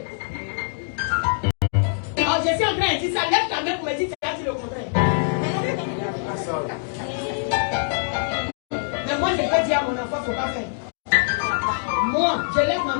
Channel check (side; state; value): right; silent; digital silence